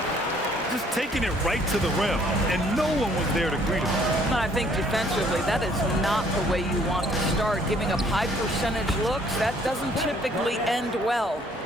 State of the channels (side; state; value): both; normal; correlation 0.61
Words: Just taking it right to the rim, and no one was there to greet him. I think defensively, that is not the way you want to start. Giving up high percentage looks, that doesn't typically end well.